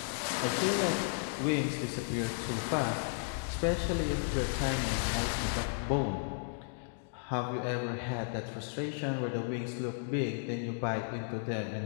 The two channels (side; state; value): right; silent; digital silence